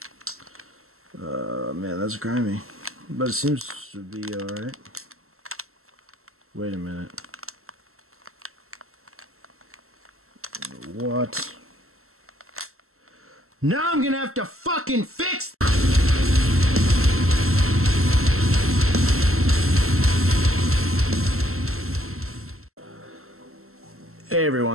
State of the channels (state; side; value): late; left; 0.63 ms